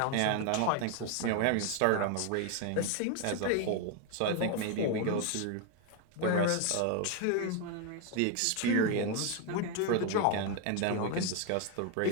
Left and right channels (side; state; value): both; different; correlation 0.01